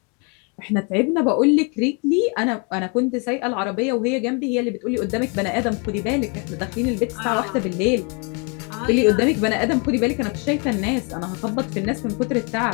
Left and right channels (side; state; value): right; quieter; 34.5 dB